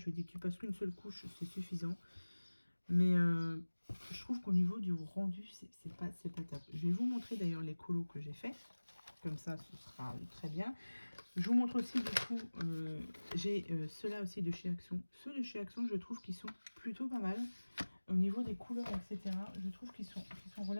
lui ai dit que tu passes qu'une seule couche, c'est suffisant. Mais je trouve qu'au niveau du rendu, c'est pas top. Je vais vous montrer d'ailleurs les colos que j'ai fait. Comme ça, ce sera très bien. Je vous montre aussi, du coup, j'ai ceux-là aussi de chez Action. Ceux de chez Action, je trouve qu'ils sont plutôt pas mal. Au niveau des couleurs, etc., je trouve qu'ils sont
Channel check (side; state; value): both; inverted; correlation -1.00